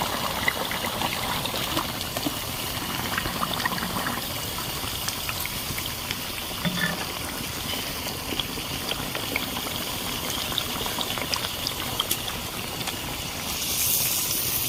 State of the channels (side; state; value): both; identical; correlation 1.00